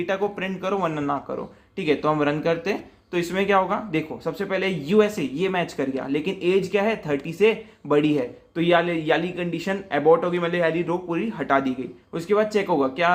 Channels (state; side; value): identical; both; correlation 1.00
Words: को प्रिंट करो, वरना ना करो, ठीक है। तो हम रन करते हैं, तो इसमें क्या होगा, देखो सबसे पहले यूएसए ये मैच कर गया, लेकिन एज क्या है 30 से बड़ी है, तो याली कंडीशन अबॉर्ट होगी, मतलब याली रो पूरी हटा दी गई। उसके बाद चेक होगा